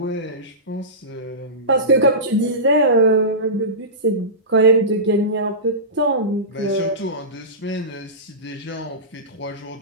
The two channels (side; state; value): both; normal; correlation -0.19